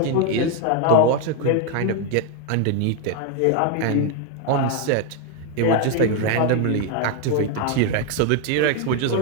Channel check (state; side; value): different; both; correlation 0.01